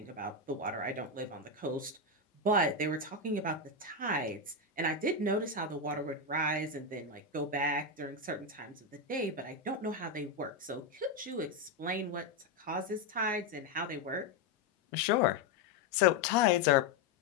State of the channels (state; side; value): quieter; right; 3.4 dB